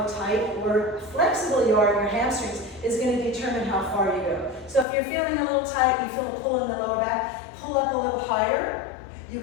tight or flexible you are in your hamstrings is going to determine how far you go. So if you're feeling a little tight, you feel a pull in the lower back, pull up a little higher. You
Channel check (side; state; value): right; drops out; at 4.9 s